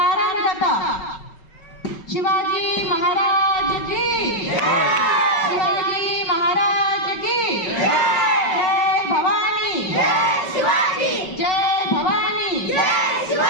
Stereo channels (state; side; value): late; right; 5.3 ms